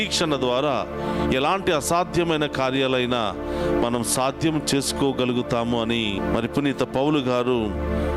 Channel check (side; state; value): both; identical; correlation 1.00